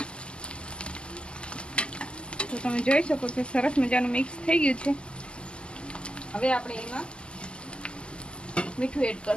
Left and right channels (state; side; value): late; right; 0.050 ms